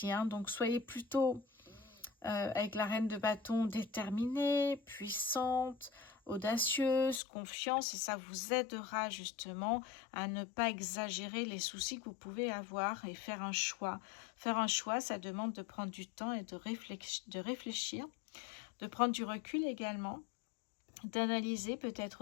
hein, donc soyez plutôt avec la reine de bâton déterminée, puissante, audacieuse, confiance, et ça vous aidera justement à ne pas exagérer les soucis que vous pouvez avoir et faire un choix. Faire un choix, ça demande de prendre du temps et de réfléchir, de prendre du recul également, d'analyser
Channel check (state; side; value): drops out; right; at 7.2 s